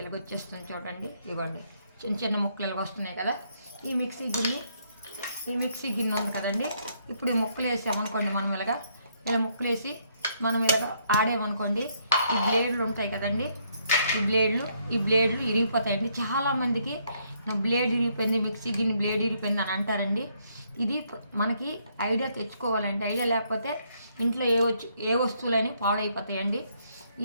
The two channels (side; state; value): both; inverted; correlation -0.72